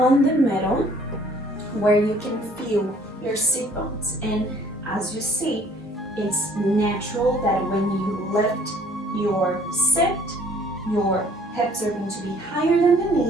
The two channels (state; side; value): normal; both; correlation 0.57